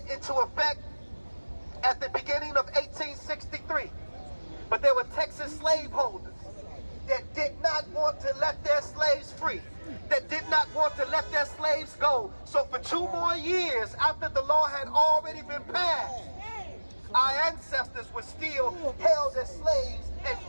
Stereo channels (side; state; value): both; inverted; correlation -1.00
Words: into effect at the beginning of 1863. But there were Texas slaveholders that did not want to let their slaves free, that did not want to let their slaves go. So for 2 more years after the law had already been passed, our ancestors were still held as slaves in